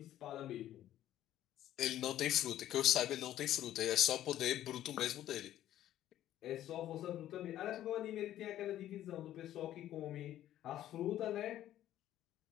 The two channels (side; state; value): right; quieter; 12.6 dB